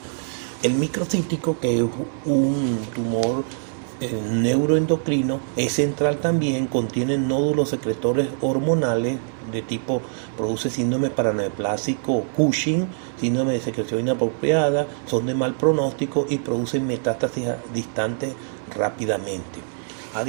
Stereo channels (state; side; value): silent; left; 60 dB below the other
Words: El microcítico, que es un tumor neuroendocrino, es central también, contiene nódulos secretores hormonales de tipo, produce síndrome paraneoplásico Cushing, síndrome de secreción inapropiada, son de mal pronóstico y producen metástasis distantes rápidamente. A